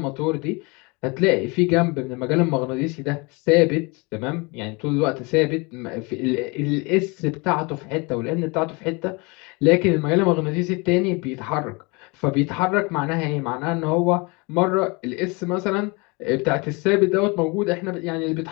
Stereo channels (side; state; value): right; quieter; 28.1 dB